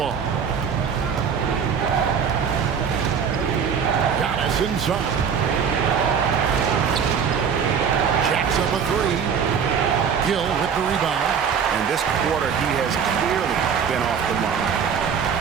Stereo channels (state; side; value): quieter; left; 6.9 dB